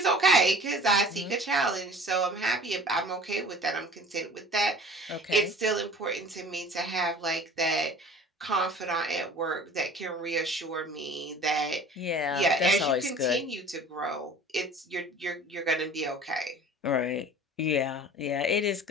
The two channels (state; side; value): normal; both; correlation 0.44